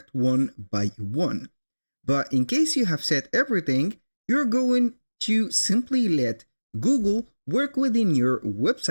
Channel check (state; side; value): inverted; both; correlation -1.00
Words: one by one. But in case you have set everything, you're going to simply let Google work within your